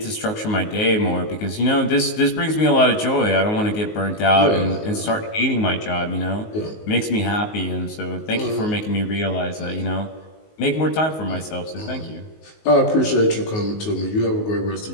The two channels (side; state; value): right; late; 19 ms